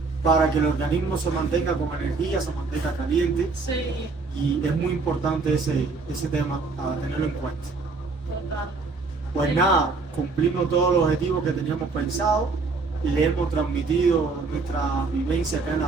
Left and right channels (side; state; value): left; quieter; 4.1 dB